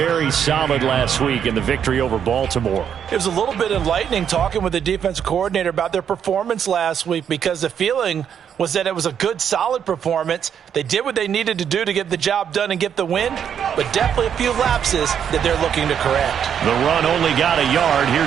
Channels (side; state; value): left; quieter; 8.4 dB